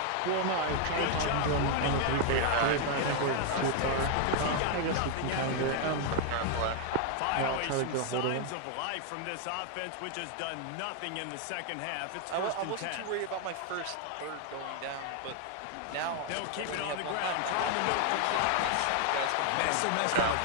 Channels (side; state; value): both; different; correlation 0.00